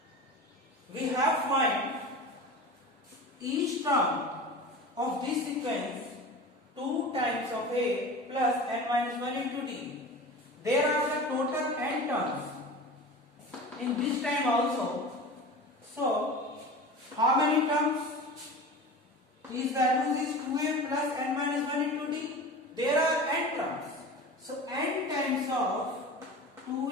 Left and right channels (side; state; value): both; normal; correlation 0.34